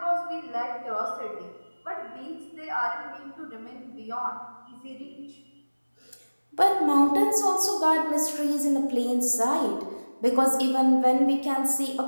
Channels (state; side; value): inverted; both; correlation -1.00